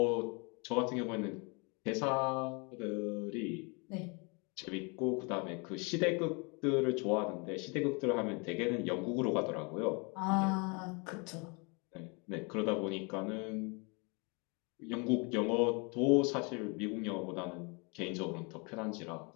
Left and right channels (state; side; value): quieter; right; 31.9 dB